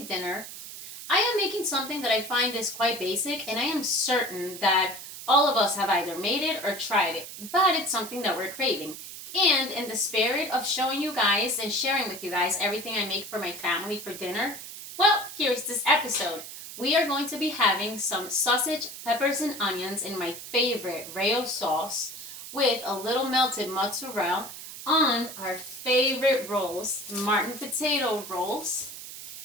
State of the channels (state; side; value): noise; right; hiss, 11 dB below the sound